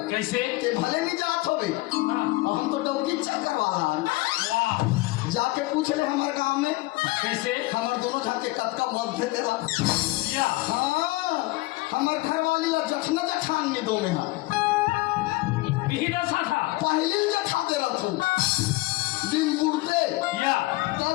कैसे? ते भले नहीं जात हो बे। हाँ। हम तो डौकी चक्कर वाला हैं। वाह, जाके पूछ ले हमारे गांव में, कैसे? हमारे दोनों जाके कद का मध्य देला। या हाँ, हमारे घर वाली और जखना जठान में दो में है। बिहिदा साथा। पहले जठा दे रहा तू दिन बुढ़ते या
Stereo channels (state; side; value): quieter; right; 21.0 dB